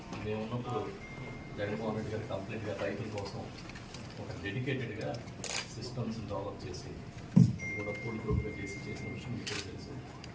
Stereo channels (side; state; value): both; identical; correlation 1.00